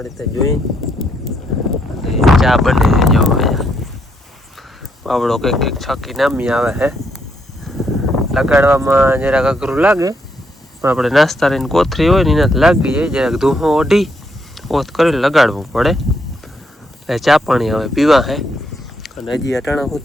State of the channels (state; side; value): normal; both; correlation 0.75